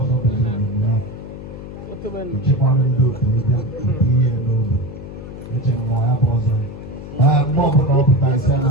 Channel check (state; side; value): noise; left; hum, 12 dB below the sound